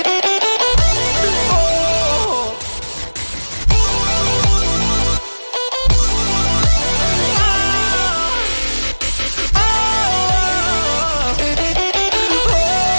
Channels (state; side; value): inverted; both; correlation -1.00